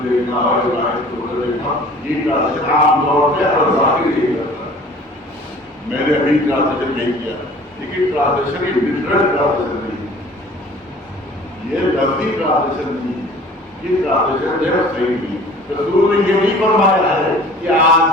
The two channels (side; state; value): both; normal; correlation 0.48